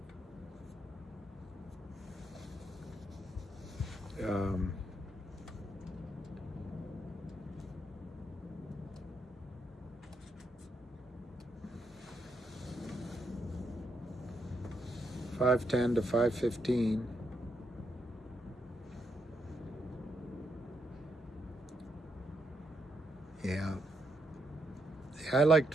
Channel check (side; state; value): both; normal; correlation 0.79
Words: Um, $5.10 to $5.15. Yeah. I liked